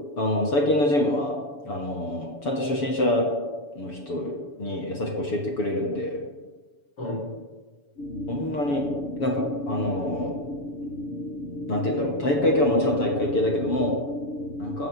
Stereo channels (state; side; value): late; right; 7.0 ms